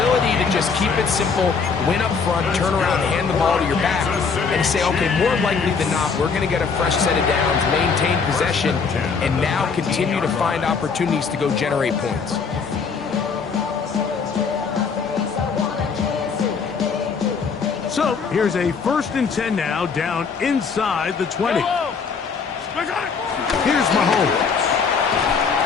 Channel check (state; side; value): quieter; right; 5.5 dB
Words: to just keep it simple, win up front, turn around, hand the ball to your back, and say, okay, more likely than not, we're going to get a fresh set of downs, maintain possession, and now continue to find opportunities to go generate points. So, here's a 1st and 10 now, down inside the 20. Here's Mahomes.